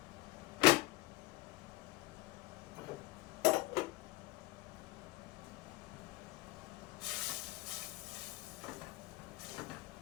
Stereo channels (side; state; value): right; quieter; 19.4 dB